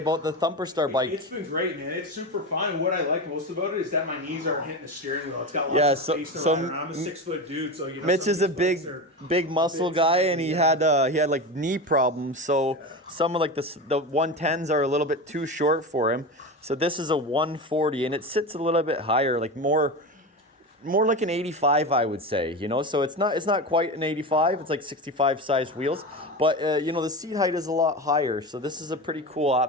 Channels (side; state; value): both; normal; correlation 0.23